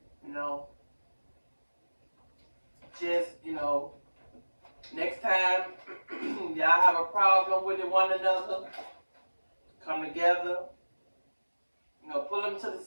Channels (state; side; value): inverted; both; correlation -1.00